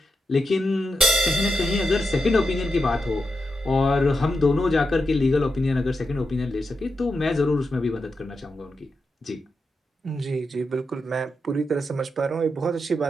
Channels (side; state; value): both; normal; correlation 0.87